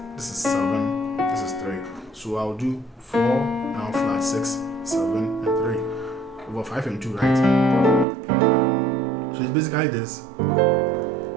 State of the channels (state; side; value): drops out; left; at 8.1 s